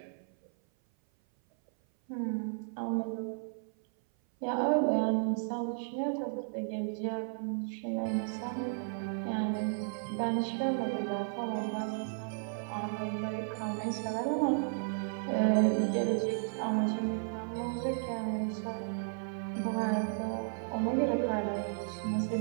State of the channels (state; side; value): silent; left; 55 dB below the other